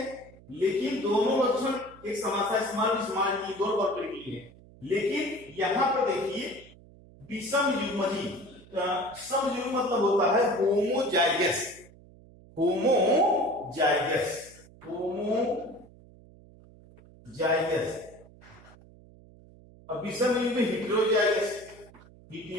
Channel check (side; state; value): right; noise; hum, 23 dB below the sound